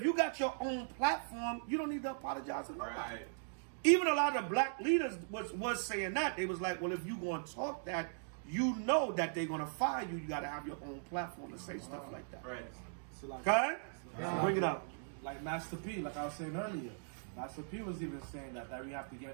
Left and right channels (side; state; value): left; silent; digital silence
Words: you got your own platform, you don't need to apologize to nobody. Even a lot of black leaders was saying that. They was like, well, if you going to talk that, you know that they're going to fire you. You got to have your own platform to say stuff like that. So like, okay? Bring it up. Like Master P, like I was saying earlier. Master P was even saying that we have to